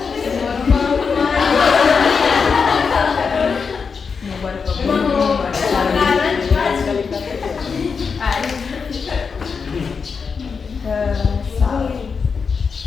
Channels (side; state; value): right; quieter; 5.5 dB